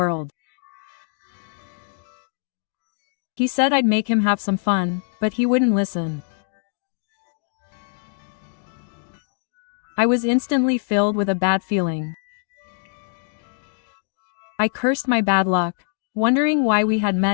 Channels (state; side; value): silent; right; digital silence